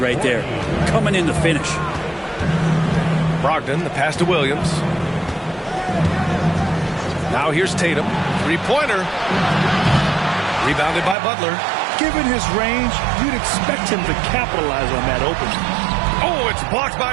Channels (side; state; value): left; drops out; at 11.2 s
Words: there. Coming in to finish. Brogdon, the pass to Williams. Now here's Tatum. 3-pointer. Rebounded by Butler. Given his range, you'd expect him to capitalize on that opening. Oh, it's blocked